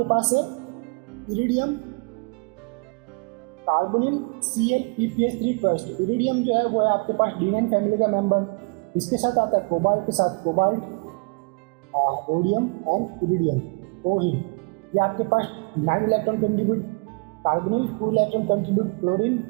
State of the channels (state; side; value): quieter; left; 32.0 dB